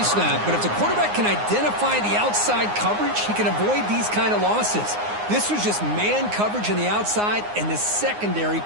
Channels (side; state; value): left; late; 9.6 ms